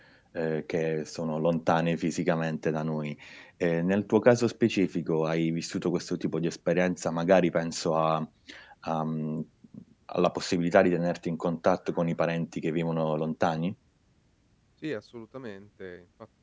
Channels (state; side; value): identical; both; correlation 1.00